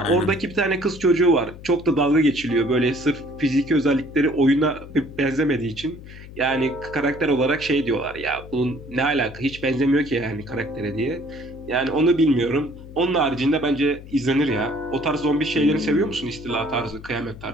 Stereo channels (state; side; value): noise; left; hum, 16 dB below the sound